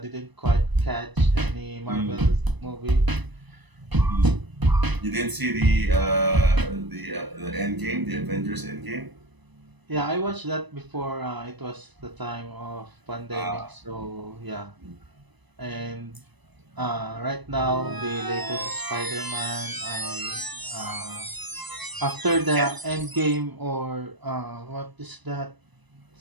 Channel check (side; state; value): left; late; 1.0 ms